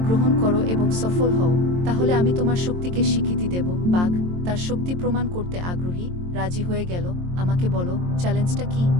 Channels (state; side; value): late; left; 23 ms